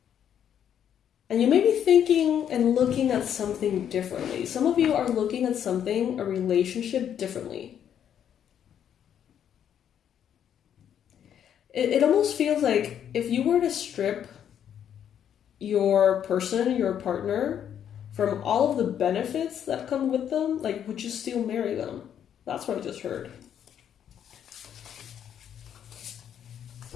And you may be thinking and looking at something differently. Some of you are looking at something, a relationship, differently. It almost feels like if you were to strip your person, your partner, from all of the benefits that come with them, like, would you still marry them? That's what I just heard.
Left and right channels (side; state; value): right; quieter; 9.3 dB